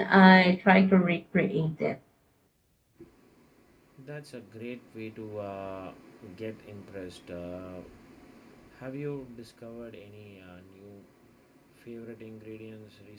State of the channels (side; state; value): both; identical; correlation 1.00